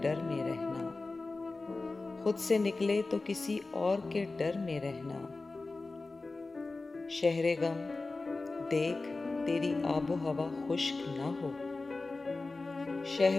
में रहना, खुद से निकले तो किसी और के डर में रहना। शहरे गम देख तेरी आबो हवा खुश्क ना हो,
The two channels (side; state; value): right; quieter; 3.5 dB